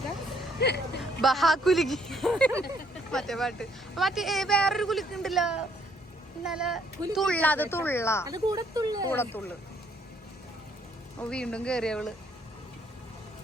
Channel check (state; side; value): normal; both; correlation 0.67